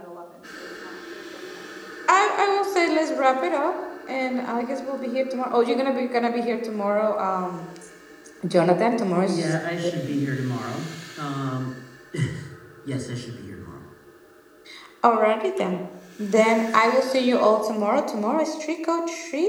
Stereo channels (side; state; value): both; identical; correlation 1.00